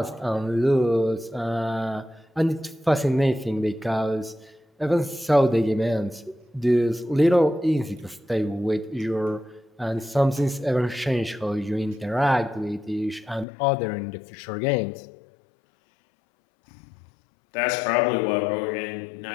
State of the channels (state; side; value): drops out; right; at 13.5 s